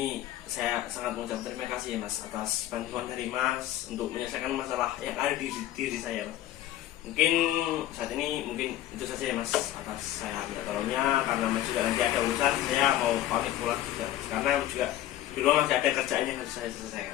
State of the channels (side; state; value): right; quieter; 13.5 dB